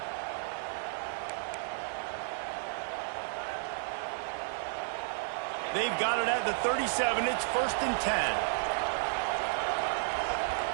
They've got it at the 37. It's 1st and 10.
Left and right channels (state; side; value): silent; left; digital silence